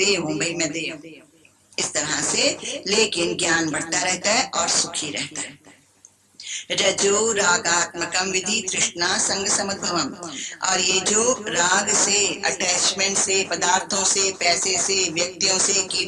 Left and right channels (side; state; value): both; identical; correlation 1.00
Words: हूँ, भाई मैं देह हूँ, इस तरह से। लेकिन ज्ञान बढ़ता रहता है और सुखी रहता है। रजो रागात्मकम विधि तृष्णा संग समुद्भवम, और ये जो राग से, अटैचमेंट से, पदार्थों से, पैसे से, व्यक्तियों से,